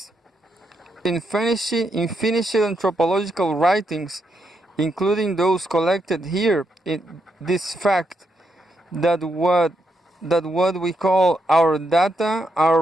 in finished anthropological writings, including those collected here. In this fact that what we call our data are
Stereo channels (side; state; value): both; normal; correlation 0.80